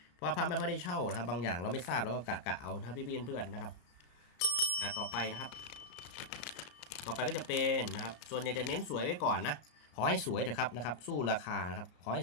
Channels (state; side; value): late; right; 34 ms